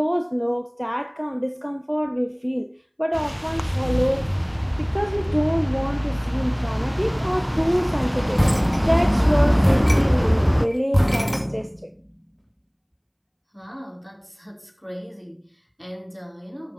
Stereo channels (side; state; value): both; identical; correlation 1.00